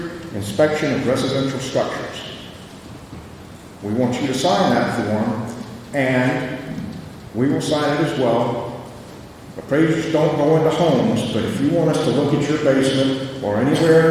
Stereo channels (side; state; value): both; identical; correlation 1.00